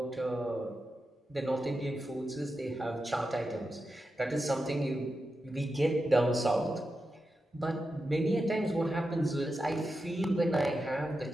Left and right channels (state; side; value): normal; both; correlation 0.89